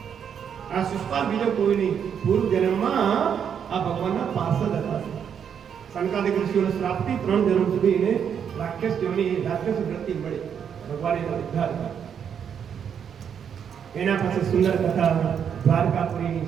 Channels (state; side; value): quieter; left; 7.9 dB